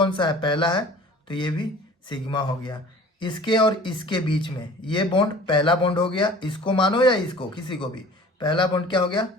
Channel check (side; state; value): both; normal; correlation 0.45